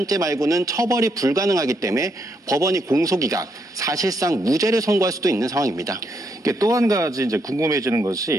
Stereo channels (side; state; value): both; normal; correlation 0.77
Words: 말고는 처벌이 불가능하기 때문에 법원이 공소기각, 사실상 무죄를 선고할 수도 있는 상황입니다. 또 한 가지 이제 궁금해지는